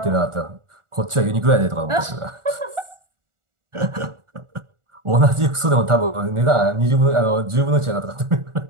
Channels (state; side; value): late; left; 1.4 ms